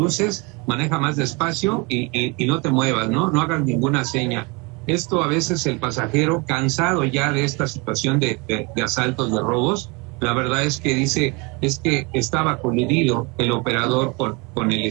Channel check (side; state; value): left; quieter; 28.8 dB